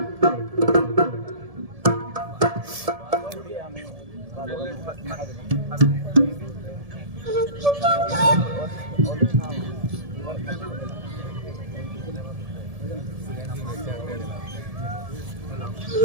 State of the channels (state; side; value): late; left; 1.7 ms